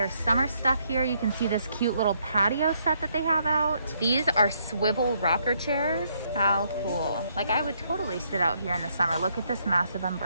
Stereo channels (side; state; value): both; inverted; correlation -0.72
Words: summer stuff here. You can see this cute little patio set that they have out. These are swivel rocker chairs. How cool. Like, I would totally sit out here in the summer. Look at this massive